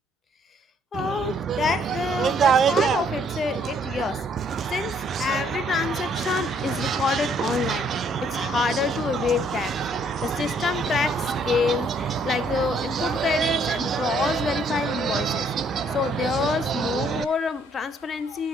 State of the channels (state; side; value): normal; both; correlation 0.66